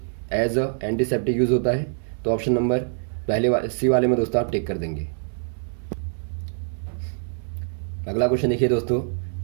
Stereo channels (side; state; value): left; silent; 60 dB below the other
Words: एज अ एंटीसेप्टिक यूज होता है। तो ऑप्शन नंबर पहले सी वाले में दोस्तों आप टिक कर देंगे। अगला क्वेश्चन देखिए दोस्तों,